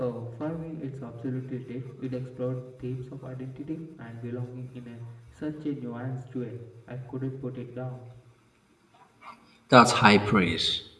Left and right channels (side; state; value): both; identical; correlation 1.00